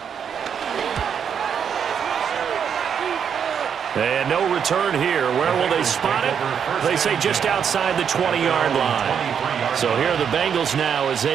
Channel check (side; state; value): left; quieter; 7.6 dB